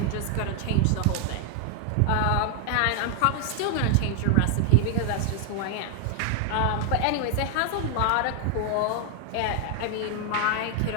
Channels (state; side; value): different; both; correlation 0.00